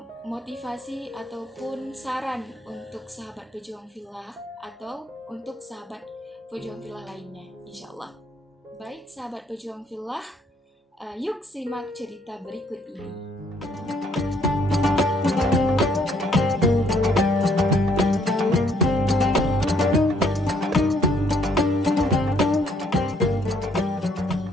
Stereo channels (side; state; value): both; normal; correlation 0.67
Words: motivasi ataupun saran untuk sahabat Pejuang Fillah atau untuk sahabat Pejuang Fillah lainnya, insya Allah. Baik sahabat Pejuang Fillah, yuk simak cerita berikut ini.